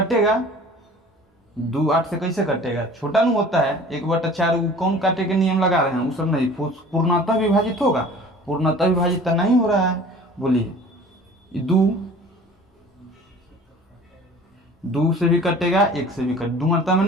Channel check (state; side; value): normal; both; correlation 0.45